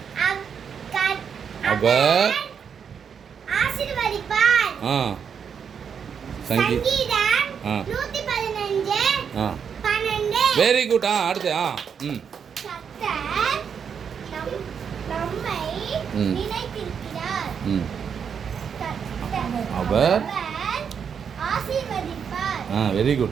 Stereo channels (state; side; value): quieter; left; 7.1 dB